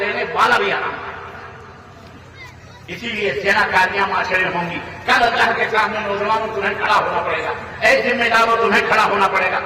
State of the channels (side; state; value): both; identical; correlation 1.00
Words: والا بھی حرام. اسی لیے زنا کاریاں معاشرے میں ہوں گی. کل اللہ کے سامنے نوجوانوں تمہیں کھڑا ہونا پڑے گا. اے ذمہ داروں تمہیں کھڑا ہونا پڑے گا.